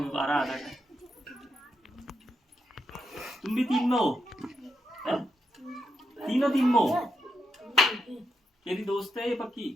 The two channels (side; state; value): both; normal; correlation 0.83